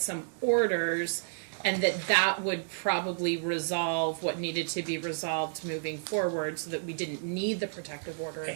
orders, and that would probably resolve what needed to be resolved moving forward, so that we didn't need the protective order.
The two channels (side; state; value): left; silent; digital silence